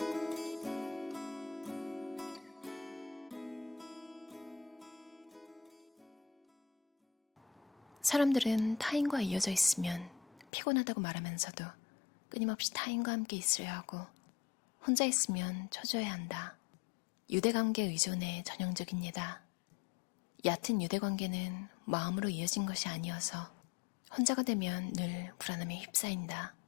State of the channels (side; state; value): right; drops out; at 10.5 s